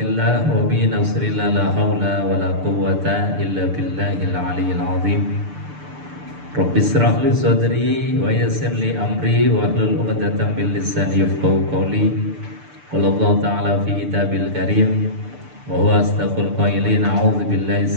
wa bi nasrillah la hawla wa la quwwata illa billahil aliyyil azim. Rabbi israh li sadri wa yassir li amri wa hlul 'uqdatam min lisani yafqahu qawli. Qala Allah ta'ala fi kitabil karim wa huwa asdaqul qailin. A'udzu billahi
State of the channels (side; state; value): left; late; 6.8 ms